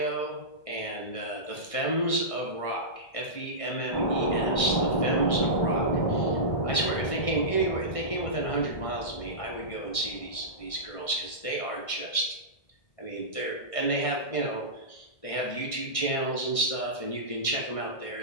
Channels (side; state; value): right; late; 1.6 ms